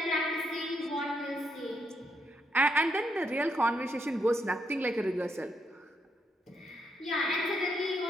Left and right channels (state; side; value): normal; both; correlation 0.78